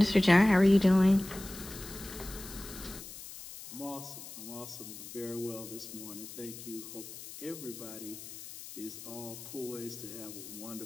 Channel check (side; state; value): left; noise; hiss, 13 dB below the sound